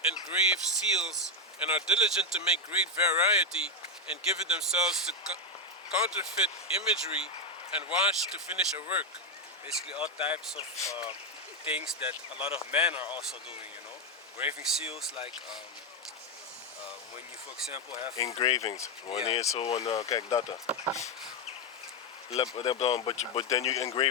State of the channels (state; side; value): normal; both; correlation 0.05